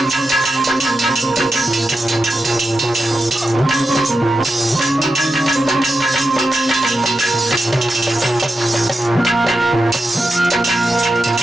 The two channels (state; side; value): normal; both; correlation 0.88